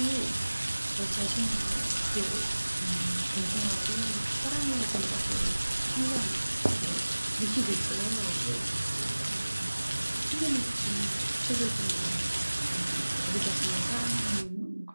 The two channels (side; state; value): both; inverted; correlation -1.00